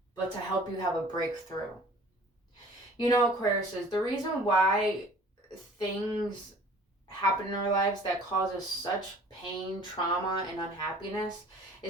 but to help you have a breakthrough. You know, Aquarius, is the reason why things happen in our lives that cause us such pain, trauma, and unhappiness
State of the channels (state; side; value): normal; both; correlation 0.50